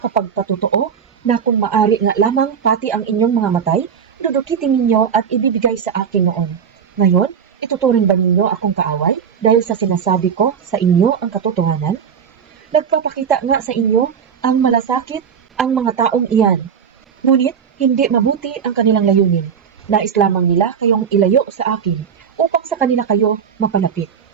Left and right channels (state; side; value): quieter; left; 7.3 dB